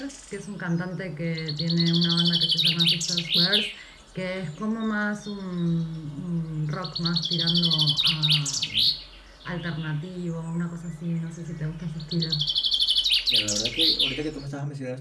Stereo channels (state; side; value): identical; both; correlation 1.00